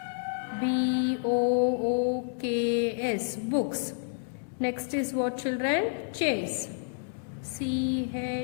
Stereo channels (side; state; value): right; silent; 58 dB below the other